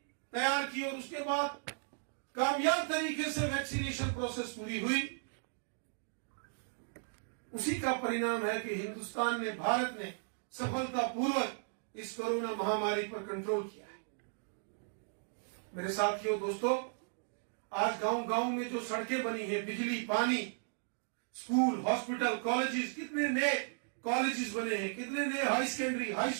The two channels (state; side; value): silent; left; digital silence